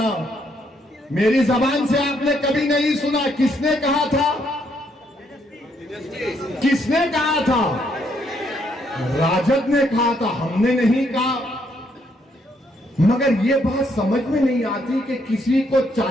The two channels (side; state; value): both; normal; correlation 0.73